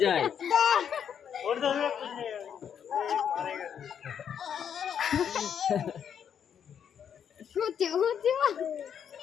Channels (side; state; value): right; quieter; 8.3 dB